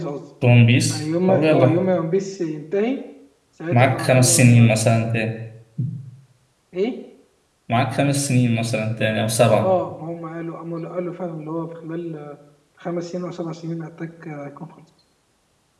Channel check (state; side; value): identical; both; correlation 1.00